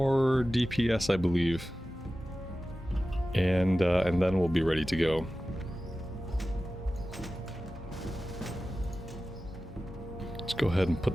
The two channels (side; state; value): both; normal; correlation 0.95